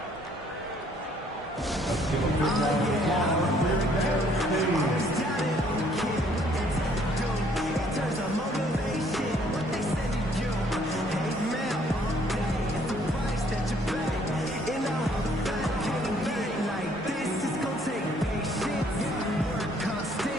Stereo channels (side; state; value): both; normal; correlation 0.63